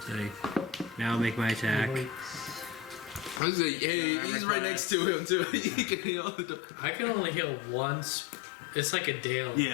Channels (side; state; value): right; drops out; at 3.4 s